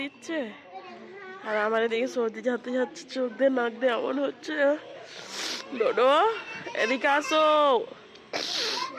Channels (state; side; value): identical; both; correlation 1.00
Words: দিচ্ছে, আর আমার এদিকে সর্দি যাতে যাচ্ছে, চোখ দিয়ে নাক দিয়ে এমন হচ্ছে। ডোডো এদিকে আসো।